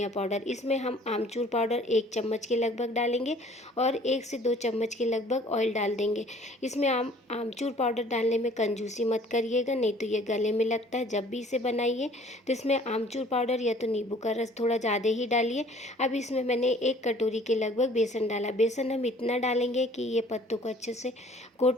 पाउडर। इसमें हम आमचूर पाउडर 1 चम्मच के लगभग डालेंगे और 1 से 2 चम्मच के लगभग ऑयल डाल देंगे। इसमें आमचूर पाउडर डालने में कंजूसी मत करिएगा, नहीं तो ये गले में लगता है। जब भी इसे बनाइए तो इसमें आमचूर पाउडर या तो नींबू का रस थोड़ा ज़्यादा ही डालिए। अब इसमें मैंने 1 कटोरी के लगभग बेसन डाला। बेसन हम इतना डालेंगे कि ये पत्तों को अच्छे से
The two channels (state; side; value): normal; both; correlation 0.53